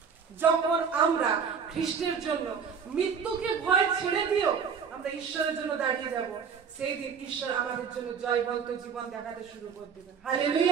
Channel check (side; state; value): left; quieter; 6.5 dB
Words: যখন আমরা খ্রিস্টের জন্য মৃত্যুকে ভয় ছেড়ে দিও আমরা ঈশ্বরের জন্য দাঁড়িয়ে যাব, সেই দিন ঈশ্বর আমাদের জন্য জয়বন্ত জীবন দেখাতে শুরু করে দেবেন।